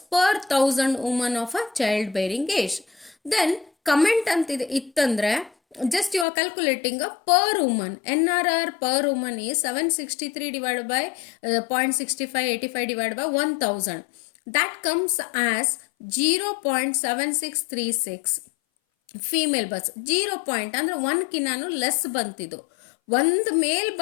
per 1000 women of a child bearing age. Then comment ಅಂತಿದೆ ಇತ್ತಂದ್ರೆ just you are calculating a per woman. NRR per woman is 763 divided by 0.6585 divided by 1000. That comes as 0.7636 female berths. 0 point ಅಂದರೆ 1ಕಿನ್ನಾನು less ಬಂತಿದ್ದು, ಒಂದು ಮೇಲ್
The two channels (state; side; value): drops out; right; at 6.2 s